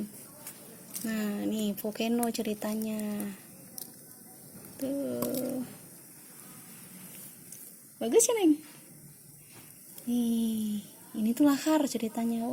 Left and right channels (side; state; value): both; identical; correlation 1.00